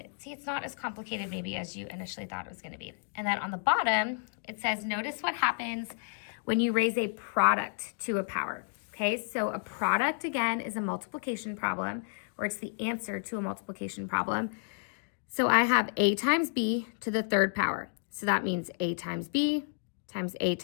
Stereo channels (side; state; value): right; silent; digital silence